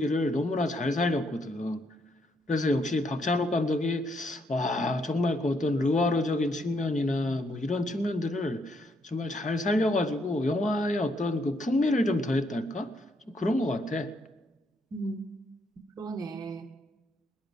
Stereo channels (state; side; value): normal; both; correlation 0.74